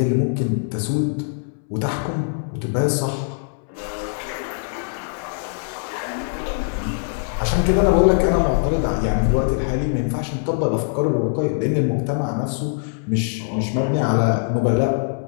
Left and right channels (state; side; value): silent; right; 64 dB below the other